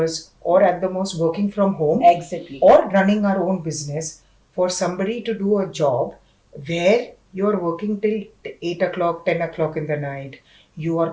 or at the most working from home Exactly. or running our own business, for somebody to do a job where you're working till 8 o'clock, 10 o'clock in the night, you are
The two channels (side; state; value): both; identical; correlation 1.00